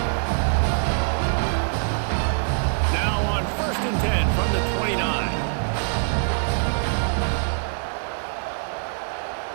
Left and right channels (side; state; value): left; silent; digital silence